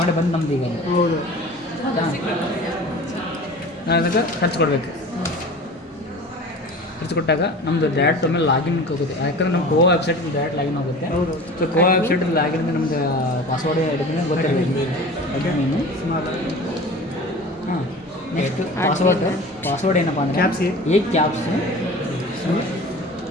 ಬಂದು ನಮ್ದು ಈಗ ಹೌದು. ಹೌದಾ? ನಾವು ಅದಕ್ಕೆ ಖರ್ಚು ಕೊಡಬೇಕು. ಖರ್ಚು ಕೊಟ್ಟಾಗ ನಮ್ಮದು ಡೈರೆಕ್ಟ್ ಒಮ್ಮೆ ಲಾಗಿನ್ ಹೋಗುತ್ತೆ. ಯಾಕಂದ್ರೆ ನಮ್ಮ ಗೋವಾ ವೆಬ್ಸೈಟ್ ಡೈರೆಕ್ಟ್ ಲಾಗಿನ್ ಹೋಗುತ್ತೆ. ಸೊ ಗೋವಾ ವೆಬ್ಸೈಟ್ ಲಾಗಿನ್ ನಮ್ದು ಪಾಸ್ವರ್ಡ್ ಹಿಡಿದ್ರೆ ಗೊತ್ತಿರಬೇಕು. ಅಡ್ಮಿನು ಹಾಂ ನೆಕ್ಸ್ಟ್ ಪಾಸ್ವರ್ಡ್ ಏನಪ್ಪ ಅಂದರೆ caps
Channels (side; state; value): both; normal; correlation 0.39